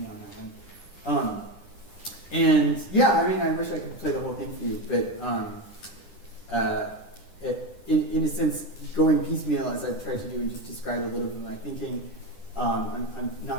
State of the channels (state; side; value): late; right; 9.9 ms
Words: on that one. I wish I could play the whole thing for you, but in a sense, going piecemeal as I've tried to do and just describe a little bit of my thinking, I'm